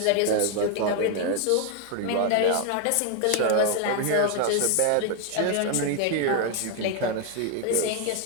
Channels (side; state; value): both; different; correlation 0.00